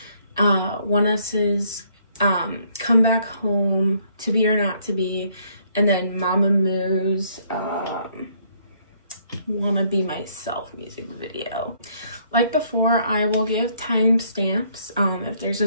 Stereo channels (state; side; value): inverted; both; correlation -0.67